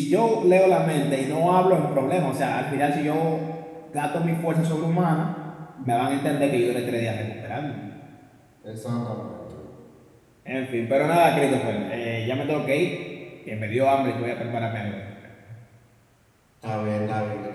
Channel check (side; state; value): both; identical; correlation 1.00